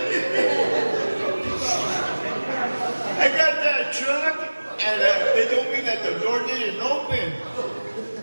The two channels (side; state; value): both; inverted; correlation -1.00